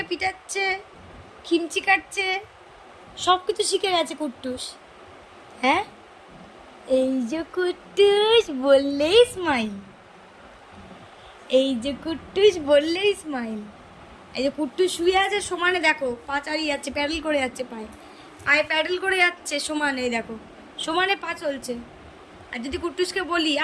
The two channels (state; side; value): identical; both; correlation 1.00